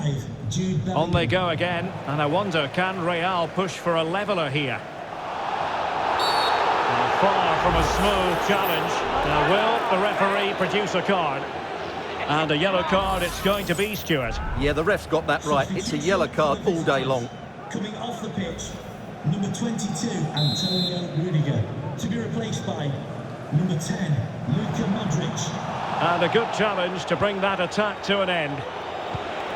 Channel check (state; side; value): identical; both; correlation 1.00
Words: Jude Bellingham. On they go again, and I wonder, can Real push for a leveler here? And far from a smooth challenge. Now will the referee produce a card? And a yellow card it's going to be, Stuart. Yeah, the ref's got that right. It's a yellow card all day long. Coming off the pitch, number 22, Antonio Rudiger. To be replaced by number 10, Luka Modric. And a good challenge to bring that attack to an end.